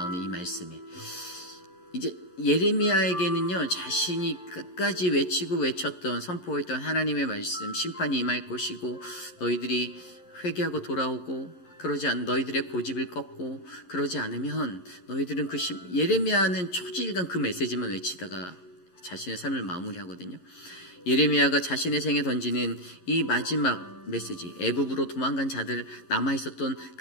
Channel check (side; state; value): right; late; 11 ms